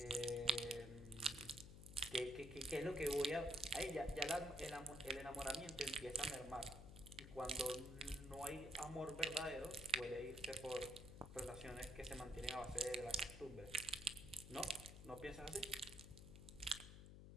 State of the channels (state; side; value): noise; left; hum, 12 dB below the sound